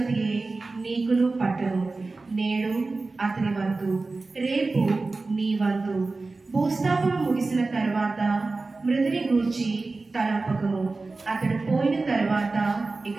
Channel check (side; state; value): left; quieter; 3.6 dB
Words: నీకును పట్టును. నేడు అతని వంతు, రేపు నీ వంతు. భూస్థాపము ముగిసిన తర్వాత మృతుని గూర్చి తలంపకము, అతడు పోయిన తర్వాత ఇక